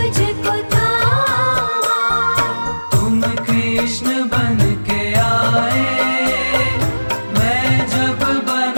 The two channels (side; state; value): both; inverted; correlation -1.00